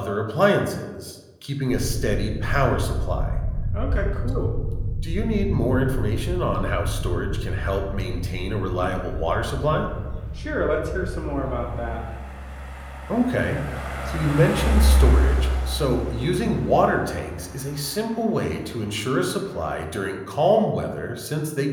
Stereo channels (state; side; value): identical; both; correlation 1.00